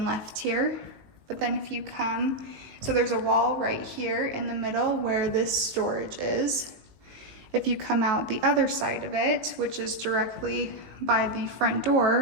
left here. But then if you come, so there's a wall right here in the middle where this storage is. If you come out the other side of it, which is directly by the front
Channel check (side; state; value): left; late; 19 ms